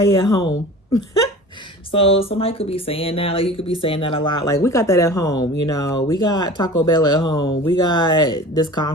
at home. So somebody could be saying that, like you could be saying that a lot, like we got that at home, you know, we got Taco Bell at home, we got this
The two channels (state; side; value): normal; both; correlation 0.39